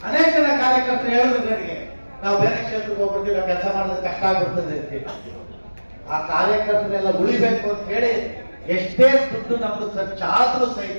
ಅನೇಕ ಜನ ಕಾರ್ಯಕರ್ತರು ಹೇಳಿದ್ರು ನನಗೆ, ನಾವು ಬೇರೆ ಕ್ಷೇತ್ರಕ್ಕೆ ಹೋಗ್ಬಿಡ್ತೀವಿ, ನಾವು ಕೆಲಸ ಮಾಡೋದು ಕಷ್ಟ ಆಗ್ಬಿಡ್ತದೆ ಅಂತ ಹೇಳಿ. ಆ ಕಾರ್ಯಕರ್ತರೆಲ್ಲ ಉಳಿಬೇಕು ಅಂತ ಹೇಳಿ ಎಷ್ಟೇ ದುಡ್ಡು ನಮ್ದು ಖರ್ಚಾದ್ರೂ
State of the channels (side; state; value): both; inverted; correlation -1.00